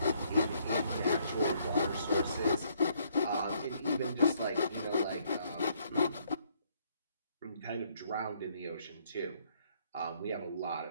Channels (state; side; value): inverted; both; correlation -0.68